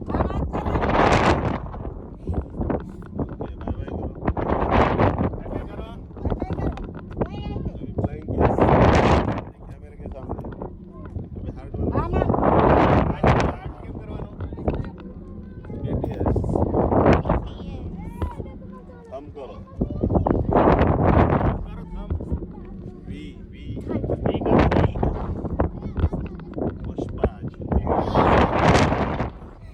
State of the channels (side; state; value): both; identical; correlation 1.00